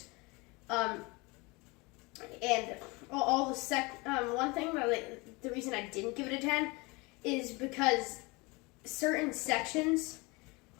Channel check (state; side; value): quieter; right; 26.0 dB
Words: And all the one thing that the reason I didn't give it a 10 is because certain sections